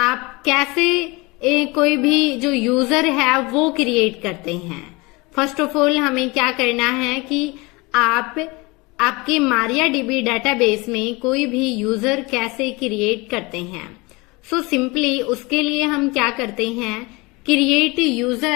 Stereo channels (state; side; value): quieter; right; 25.1 dB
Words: कैसे कोई भी जो यूजर है वो क्रिएट करते हैं। फर्स्ट ऑफ ऑल हमें क्या करना है कि आप आपके MariaDB डेटाबेस में कोई भी यूजर कैसे क्रिएट करते हैं। सो सिंपली उसके लिए हम क्या करते हैं, क्रिएट